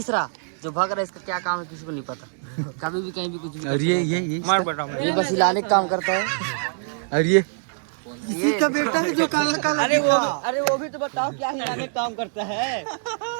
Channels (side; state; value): left; silent; digital silence